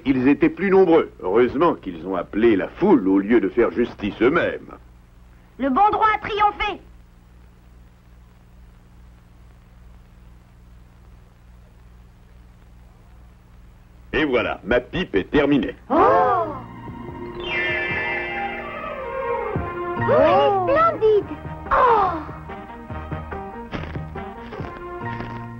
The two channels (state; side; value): identical; both; correlation 1.00